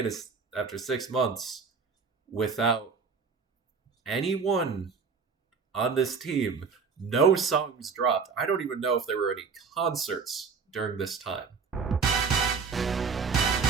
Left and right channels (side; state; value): left; quieter; 5.4 dB